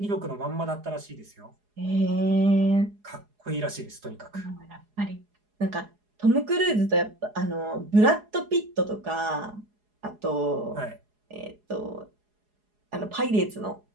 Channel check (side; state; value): left; late; 4.8 ms